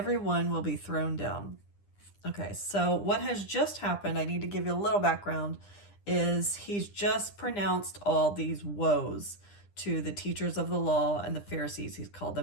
one will be thrown down. Okay, so what has just happened, I need to give you a little background, is he's just pronounced all these woes to the teachers of the law and the Pharisees. He's called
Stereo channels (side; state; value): right; late; 9.9 ms